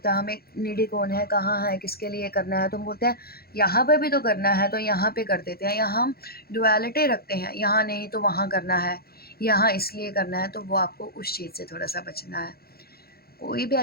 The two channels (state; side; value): late; right; 0.45 ms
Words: हमें नीडी कौन है, कहाँ है, किसके लिए करना है। तो हम बोलते हैं यहाँ पे भी तो करना है, तो यहाँ पे कर देते हैं। यहाँ हम डुअलिटी रखते हैं, यहाँ नहीं तो वहाँ करना है, यहाँ इसलिए करना है। तो वो आपको उस चीज़ से थोड़ा सा बचना है। कोई भी